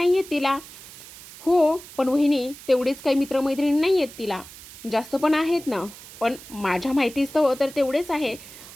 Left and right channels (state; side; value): noise; right; hiss, 17 dB below the sound